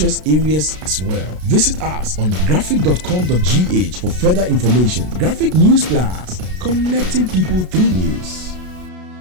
areas as well. Visit us on graphic.com.gh for further information. Graphic News Plus, connecting people through news.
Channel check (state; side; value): late; left; 33 ms